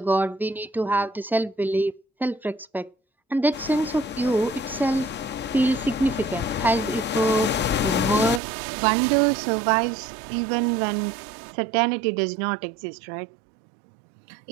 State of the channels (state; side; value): drops out; left; at 8.4 s